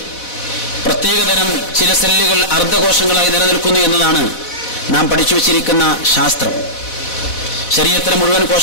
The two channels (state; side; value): late; right; 4.1 ms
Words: പ്രത്യേകതരം ചില സെല്ലുകൾ അർദ്ധകോശങ്ങളായി നിലനിൽക്കുന്നു എന്നതാണ് നാം പഠിച്ചു വച്ചിരിക്കുന്ന ശാസ്ത്രം. ശരീരത്തിലെ മുഴുവൻ